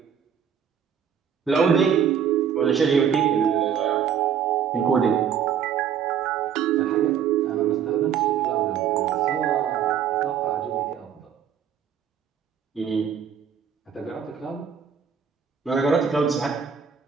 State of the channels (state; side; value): quieter; left; 8.1 dB